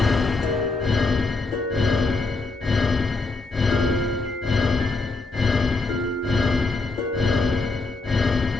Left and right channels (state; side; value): quieter; right; 3.6 dB